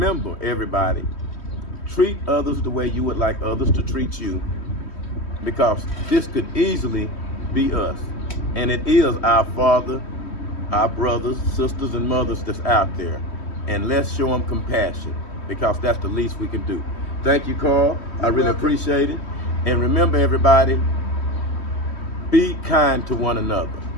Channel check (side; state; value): right; late; 3.1 ms